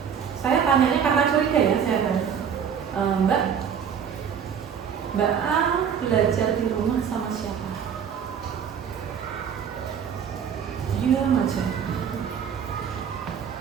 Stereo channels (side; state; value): left; quieter; 7.7 dB